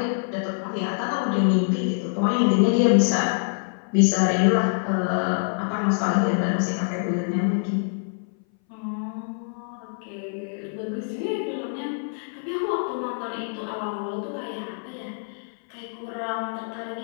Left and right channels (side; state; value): right; silent; 59 dB below the other